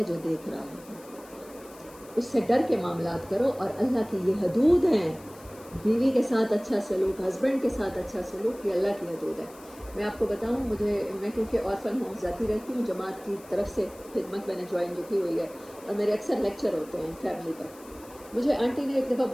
جو دیکھ رہا ہے۔ اس سے ڈر کے معاملات کرو، اور اللہ کی یہ حدود ہیں، بیوی کے ساتھ اچھا سلوک، ہسبینڈ کے ساتھ اچھا سلوک، یہ اللہ کی حدود ہے۔ میں آپ کو بتاؤں، میں کیونکہ آرفن ہوم جاتی رہتی ہوں، جماعت کی طرف سے خدمت میں نے جوائن جو کی ہوئی ہے، اور میرے اکثر لیکچر ہوتے ہیں فیملی پر۔ مجھے آنٹی نے ایک دفعہ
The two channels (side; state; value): left; noise; hiss, 22 dB below the sound